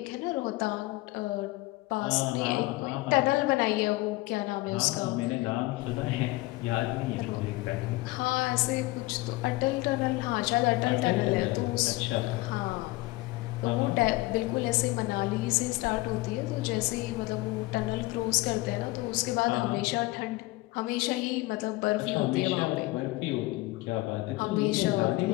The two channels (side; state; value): right; quieter; 20.6 dB